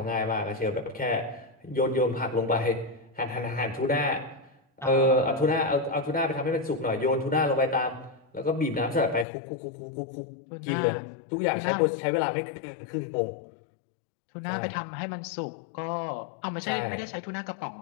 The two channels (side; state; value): right; drops out; at 9.2 s